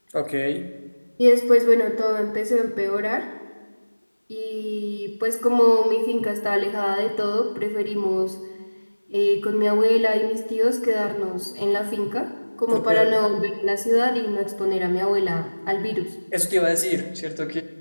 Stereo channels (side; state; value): both; inverted; correlation -1.00